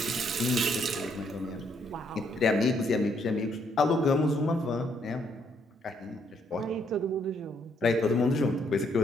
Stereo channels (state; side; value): normal; both; correlation 0.71